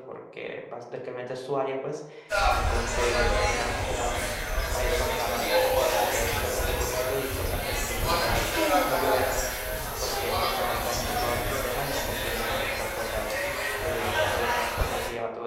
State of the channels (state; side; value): identical; both; correlation 1.00